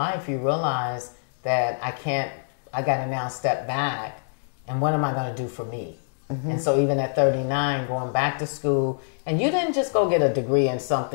you realize that I got to now step back, and what am I going to do for me? Mm-hmm. And so even at 39, going back to school, and you didn't just go get a degree in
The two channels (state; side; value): silent; right; digital silence